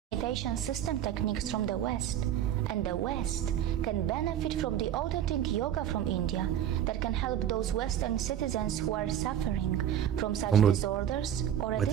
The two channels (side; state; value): left; quieter; 10.3 dB